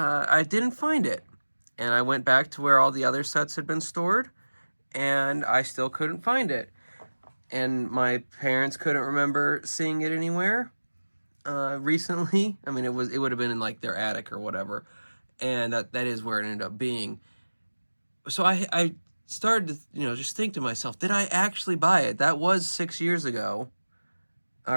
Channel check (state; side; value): inverted; both; correlation -1.00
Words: didn't find it. And I went back to where all the other sets had been stored, and I still couldn't find it. And my parents couldn't remember seeing it anywhere recently. I mean, it would have been in like their attic or whatever, and that is where it ended up being. So I started to just think to myself, did I actually buy it? That was 6 years ago,